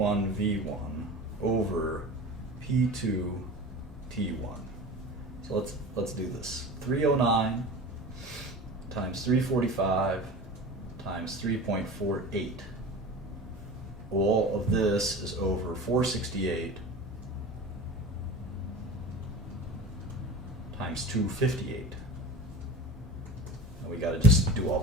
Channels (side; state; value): both; normal; correlation 0.35